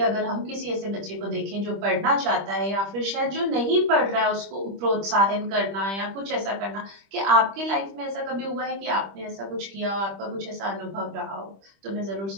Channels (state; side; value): late; left; 25 ms